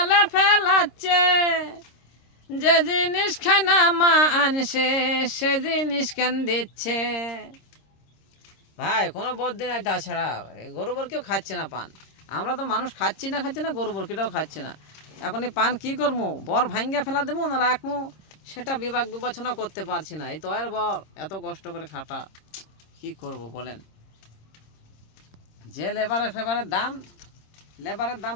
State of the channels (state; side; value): late; right; 26 ms